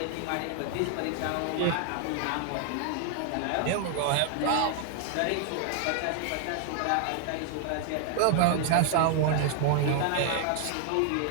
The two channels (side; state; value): both; different; correlation 0.00